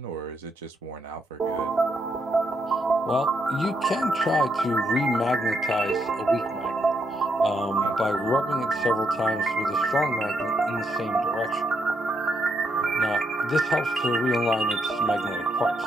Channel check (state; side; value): normal; both; correlation 0.78